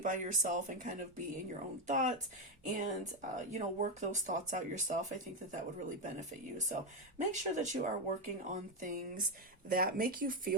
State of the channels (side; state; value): both; normal; correlation 0.07